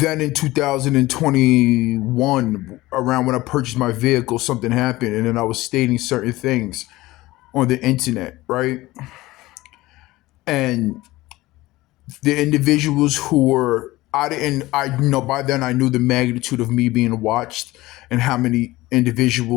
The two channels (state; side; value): quieter; right; 18.6 dB